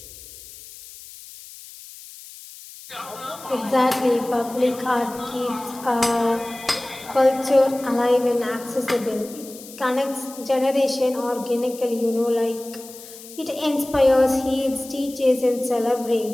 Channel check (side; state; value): left; noise; hiss, 17 dB below the sound